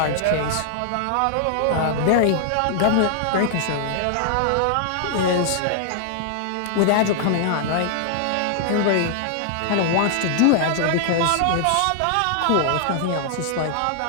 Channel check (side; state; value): both; different; correlation -0.01